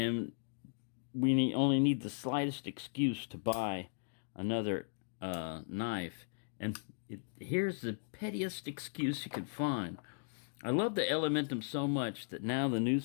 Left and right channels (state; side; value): silent; right; digital silence